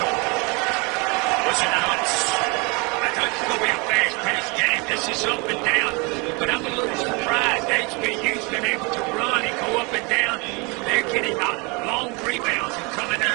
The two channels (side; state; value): left; quieter; 29.5 dB